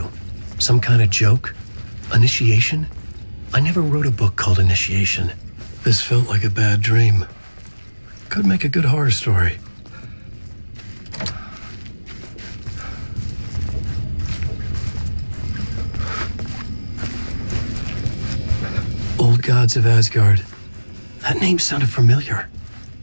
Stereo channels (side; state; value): both; inverted; correlation -1.00